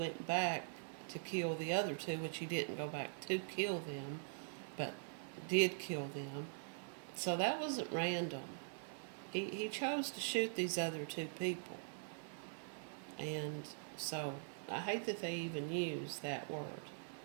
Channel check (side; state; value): left; silent; digital silence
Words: back to kill the other 2, which he didn't go back to kill them, but did kill them. So that wasn't random. He chose to shoot these other 2 people. And so I hate that they even use that word.